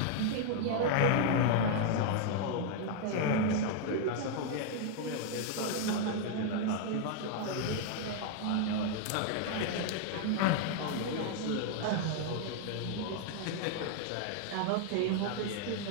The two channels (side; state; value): both; different; correlation 0.00